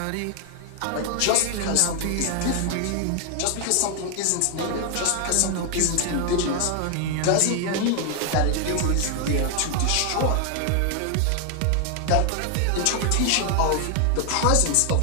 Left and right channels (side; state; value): both; different; correlation 0.00